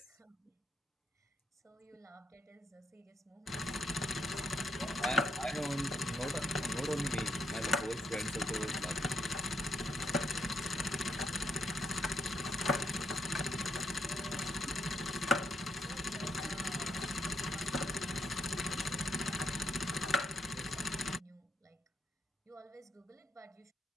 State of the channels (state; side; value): normal; both; correlation 0.79